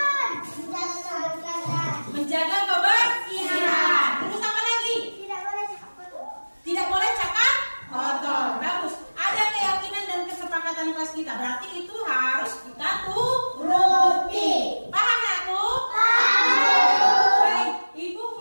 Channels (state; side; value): inverted; both; correlation -1.00